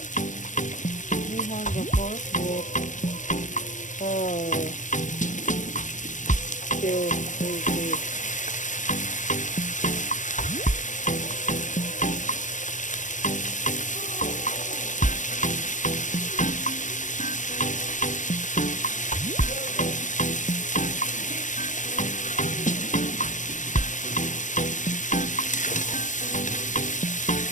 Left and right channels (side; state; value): right; late; 0.37 ms